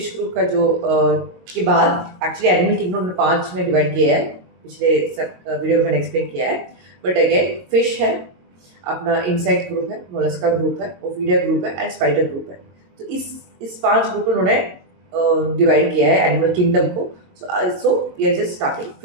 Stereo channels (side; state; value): left; late; 22 ms